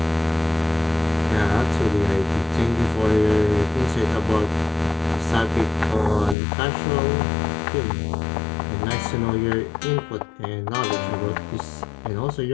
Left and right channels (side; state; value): right; drops out; at 6.4 s